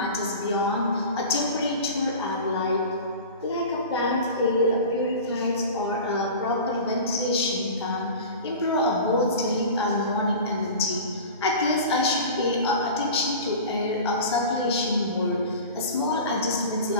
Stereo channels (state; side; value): inverted; both; correlation -0.35